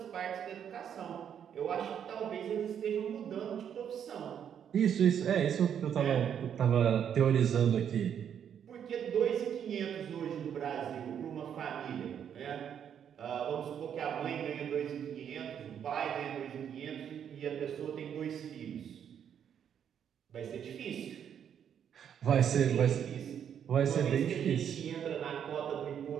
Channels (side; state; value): left; quieter; 8.7 dB